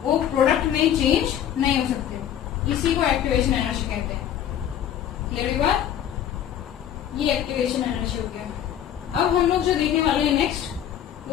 वो प्रोडक्ट में चेंज नहीं हो सकते, इसी को एक्टिवेशन एनर्जी कहते हैं। क्लियर बात, ये एक्टिवेशन एनर्जी हो गया। अब हम लोग जो देखने वाले हैं नेक्स्ट,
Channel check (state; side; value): quieter; right; 10.2 dB